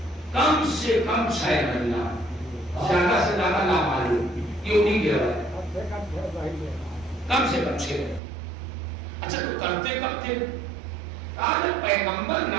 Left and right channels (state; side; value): drops out; left; at 8.2 s